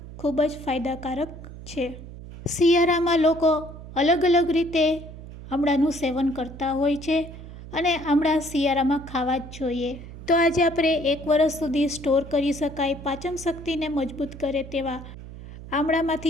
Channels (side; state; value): right; noise; hum, 14 dB below the sound